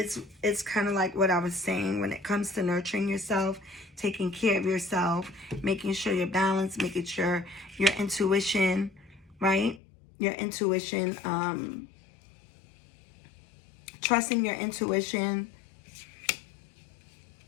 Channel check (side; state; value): right; drops out; at 9.8 s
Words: kind of like what I was saying when it comes to nurturing yourself, taking care of yourself, making sure you're balanced, making sure your intuition, right? Your intuition, trusting your intuition,